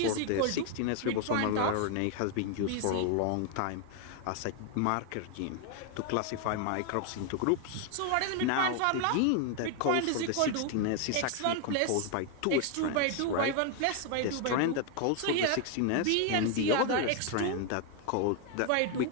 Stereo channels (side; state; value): both; different; correlation 0.01